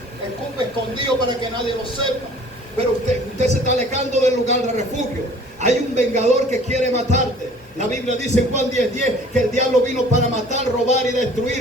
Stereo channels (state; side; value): normal; both; correlation 0.51